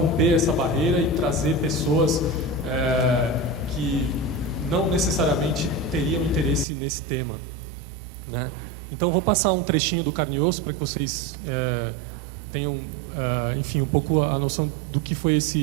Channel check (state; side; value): drops out; left; at 6.7 s